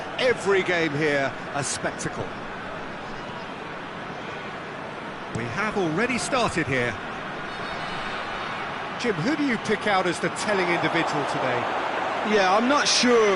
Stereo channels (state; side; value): identical; both; correlation 1.00